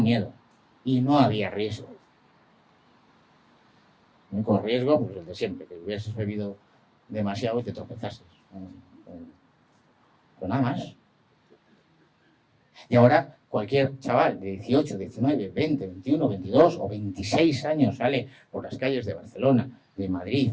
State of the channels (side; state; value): both; identical; correlation 1.00